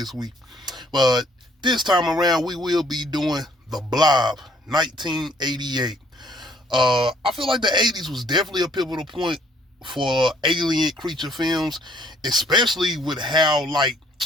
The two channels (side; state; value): both; normal; correlation 0.63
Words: week, but this time around we will be doing The Blob, 1988. I feel like the 80s was definitely a pivotal point for alien creature films, especially with how